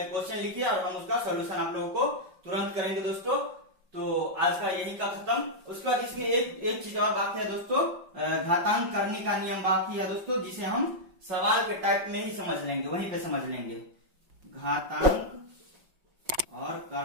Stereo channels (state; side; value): late; left; 5.4 ms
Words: क्वेश्चन लिखिए और हम उसका सोल्यूशन आप लोगों को तुरंत करेंगे दोस्तों। तो आज का यही का खत्म। उसके बाद इसमें एक चीज और बाकी है दोस्तों, घातांक करने का नियम बाकी है दोस्तों, जिसे हम सवाल के टाइप में ही समझ लेंगे, वहीं पे समझ लेंगे। घातांक और